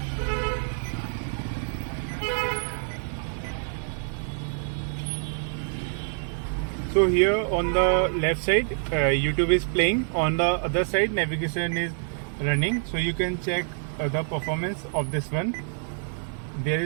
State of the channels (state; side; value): silent; left; 60 dB below the other